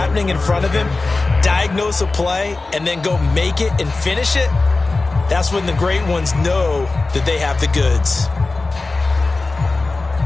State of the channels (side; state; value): right; quieter; 3.5 dB